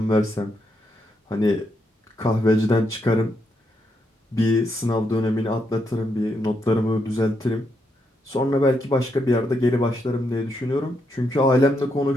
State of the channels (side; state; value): both; normal; correlation 0.80